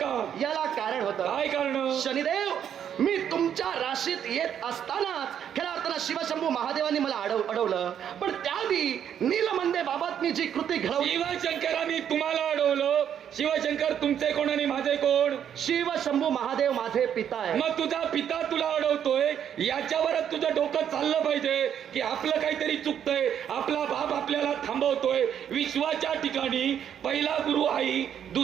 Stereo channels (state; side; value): quieter; left; 9.1 dB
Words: याला कारण होतं. काय कारण? शनिदेव, मी तुमच्या राशीत येत असतानाच खऱ्या अर्थानं शिवशंभू महादेवांनी मला अडवलं. पण त्याआधी नीलमंदे बाबत मी जी कृती घडवली. शिवशंकरांनी तुम्हाला अडवलं. शिवशंकर तुमचे कोण आणि माझे कोण? शिवशंभू महादेव माझे पिता आहे. मग तुझा पिता तुला अडवतोय, याच्यावरच तुझं डोकं चाललं पाहिजे की आपलं काहीतरी चुकतंय, आपला बाप आपल्याला थांबवतोय. विश्वाच्या ठिकाणी पहिला गुरु आई,